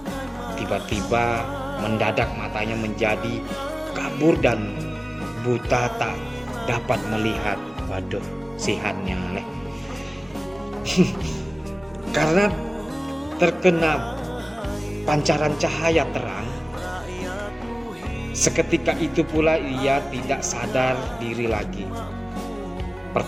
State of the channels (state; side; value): normal; both; correlation 0.97